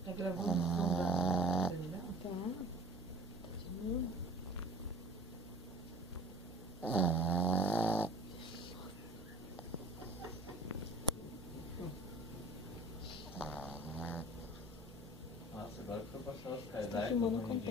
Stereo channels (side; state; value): both; normal; correlation 0.45